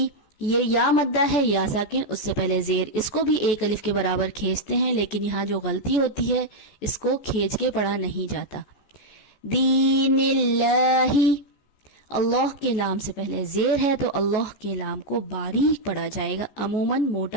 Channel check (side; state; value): right; late; 14 ms